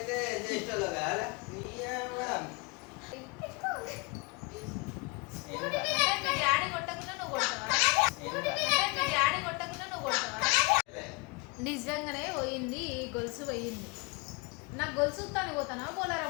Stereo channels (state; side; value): quieter; right; 28.7 dB